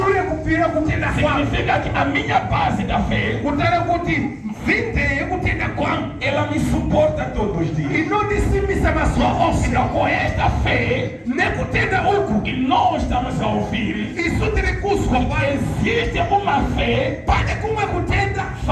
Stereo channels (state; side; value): identical; both; correlation 1.00